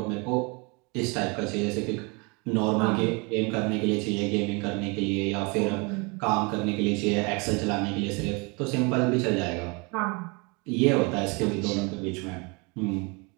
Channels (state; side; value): quieter; left; 30.0 dB